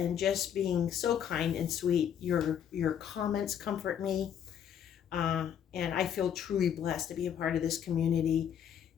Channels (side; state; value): right; quieter; 8.9 dB